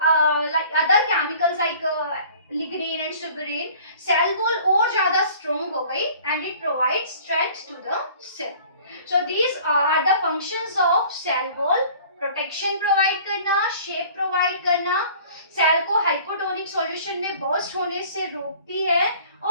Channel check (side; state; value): both; inverted; correlation -0.49